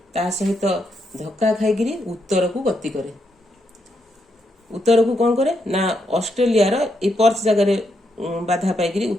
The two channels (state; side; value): normal; both; correlation 0.80